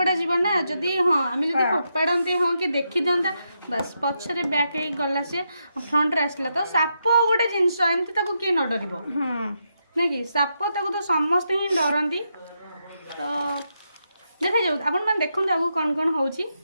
जीव ना जदि हाँ आम जब फोपाड़ती हाँ कि देखी दिंता बस पछरे बैक गला से फ्रंट रे आसला तो साप गोटे जिनस एमती किए न डर ना कि साप तो समस्ते ही डरती तो देखा जाऊ आपण मैंने देखु आगू कौन कौन हो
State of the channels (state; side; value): inverted; both; correlation -0.83